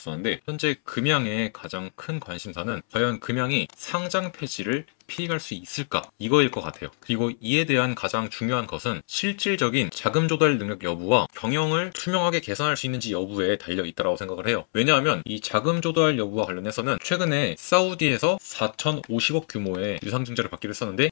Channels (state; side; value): silent; right; 61 dB below the other